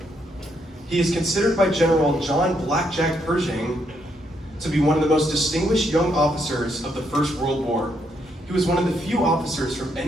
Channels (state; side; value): normal; both; correlation 0.75